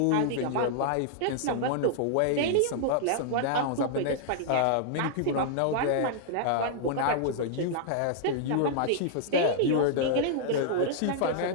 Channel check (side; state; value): both; different; correlation -0.01